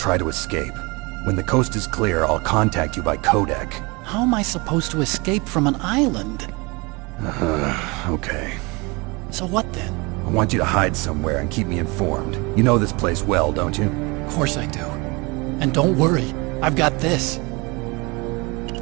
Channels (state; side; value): quieter; left; 26.8 dB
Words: to escape. When the coast is clear, I'll contact you by codec. How am I supposed to escape from an island? Okay. So what then? I want you to hide somewhere and keep me informed. You know this place well, don't you? Of course I do. And don't worry, I've got this.